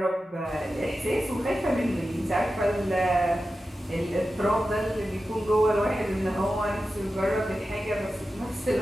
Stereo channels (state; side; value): normal; both; correlation 0.92